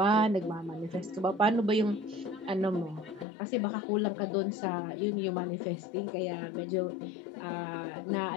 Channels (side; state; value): right; drops out; at 3.2 s